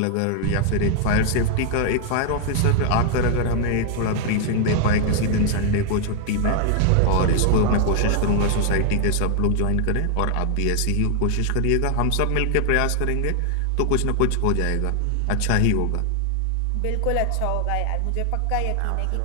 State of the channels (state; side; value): different; both; correlation 0.00